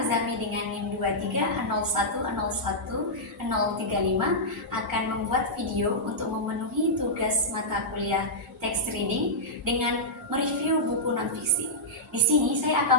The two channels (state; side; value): normal; both; correlation -0.10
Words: dengan NIM 230101035 akan membuat video untuk memenuhi tugas mata kuliah text reading dengan mereview buku non-fiksi. Di sini saya